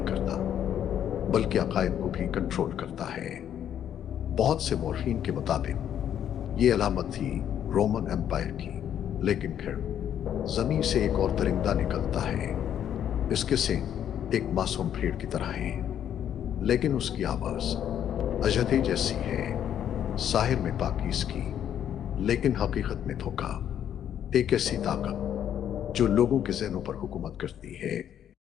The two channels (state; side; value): quieter; right; 9.8 dB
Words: करता बल्कि अकायद को भी कंट्रोल करता है। बहुत से मौरखीन के मुताबिक ये अलामत थी रोमन एम्पायर की। लेकिन फिर जमीन से एक और दरिंदा निकलता है। इसके सींग एक मासूम भेड़ की तरह हैं, लेकिन उसकी आवाज अजदे जैसी है। साहिर में पाकीज़गी लेकिन हकीकत में धोखा। एक ऐसी ताकत जो लोगों के ज़हनों पर हुकूमत करती है।